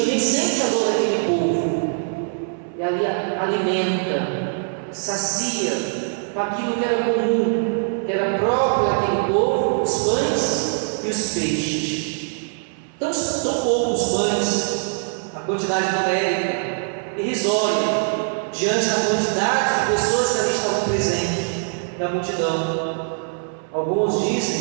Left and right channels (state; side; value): silent; left; 62 dB below the other